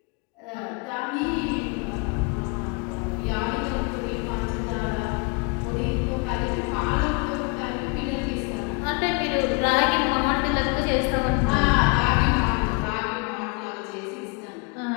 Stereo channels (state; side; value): quieter; right; 31.5 dB